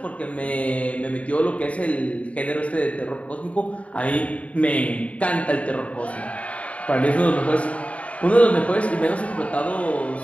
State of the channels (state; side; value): late; right; 0.066 ms